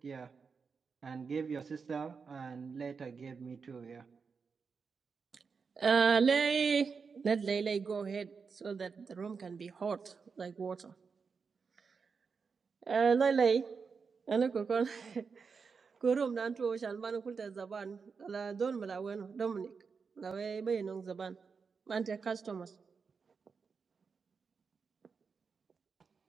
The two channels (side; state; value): left; quieter; 5.4 dB